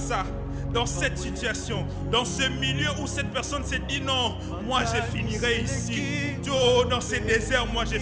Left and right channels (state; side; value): identical; both; correlation 1.00